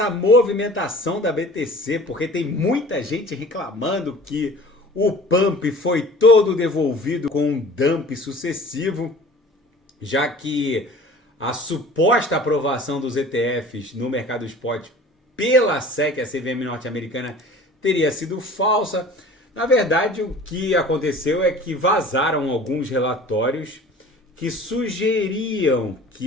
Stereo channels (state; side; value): normal; both; correlation 0.44